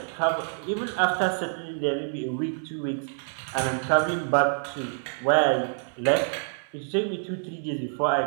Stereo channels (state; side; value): silent; left; 60 dB below the other